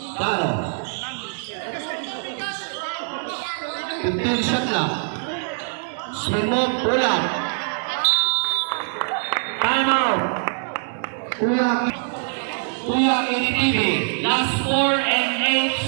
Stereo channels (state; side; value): silent; left; 63 dB below the other